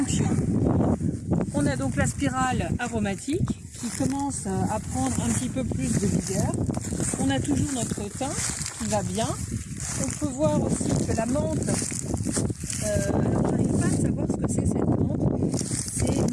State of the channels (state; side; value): identical; both; correlation 1.00